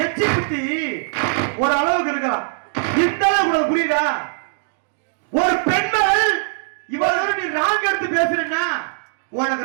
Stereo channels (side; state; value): left; silent; digital silence